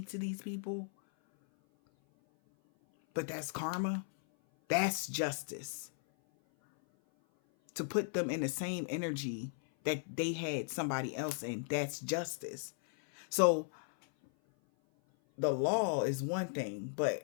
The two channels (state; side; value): silent; right; 54 dB below the other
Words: to these people. But that's karma. That's justice. To put them in the same energy that they had somebody else in, that's justice. So the law is one thing,